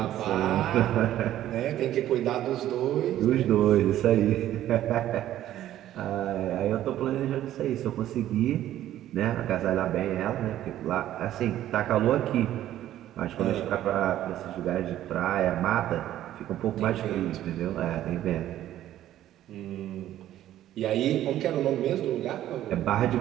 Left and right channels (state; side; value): quieter; left; 12.8 dB